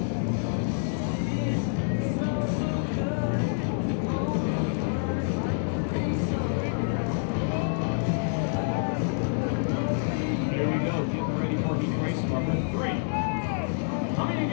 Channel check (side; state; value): right; silent; 60 dB below the other